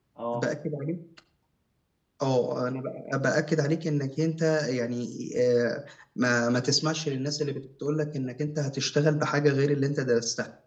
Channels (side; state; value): both; identical; correlation 1.00